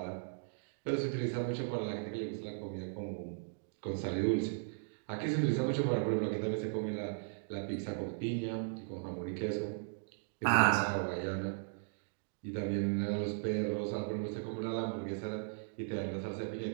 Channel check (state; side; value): silent; left; digital silence